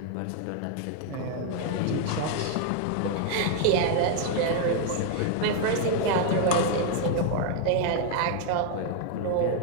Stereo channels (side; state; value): both; different; correlation 0.00